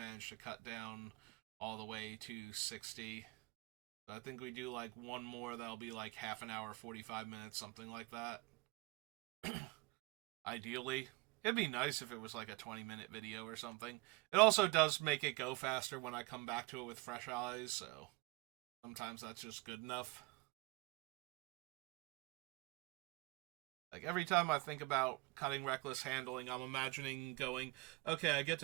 to cut down all the way to 60. So I think we do like one more that'll be like half an hour, 45 minutes, something like that. Ideally. It'd be nice if it was like a 20-minute video or something. It also does make it go faster when I come back to it with fresh eyes, so sometimes that's just good enough. Like, every time I think about cutting Reckless Handling, I'm imagining going, okay, I get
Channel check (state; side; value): quieter; left; 24.2 dB